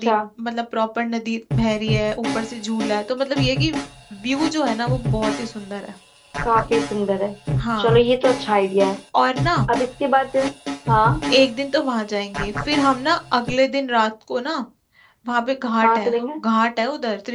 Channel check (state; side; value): identical; both; correlation 1.00